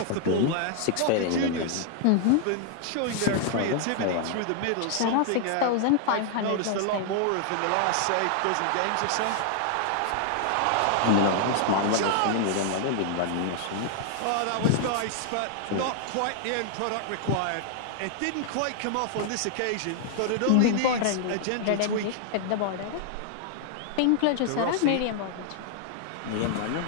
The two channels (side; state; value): both; different; correlation 0.00